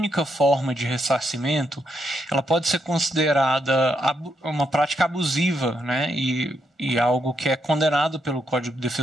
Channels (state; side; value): normal; both; correlation 0.79